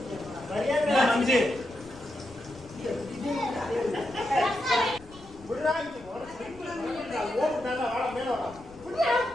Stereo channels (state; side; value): noise; left; rumble, 21 dB below the sound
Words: சரியா மஞ்சி புடிராங்கி ஓட ஓடு நல்லா வாட மேல வாடா புடியா